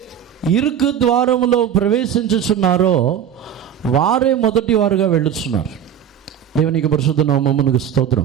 ఇరుకు ద్వారములో ప్రవేశించుచున్నారో వారే మొదటి వారుగా వెళ్ళుచున్నారు. దేవునికి పరిశుద్ధ నామమునకు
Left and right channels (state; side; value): quieter; left; 9.3 dB